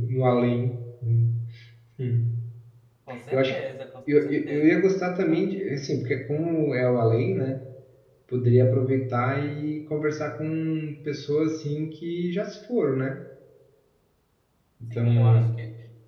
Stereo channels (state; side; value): identical; both; correlation 1.00